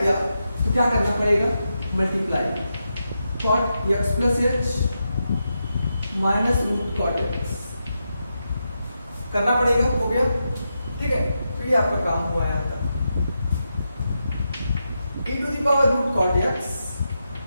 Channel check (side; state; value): both; inverted; correlation -0.87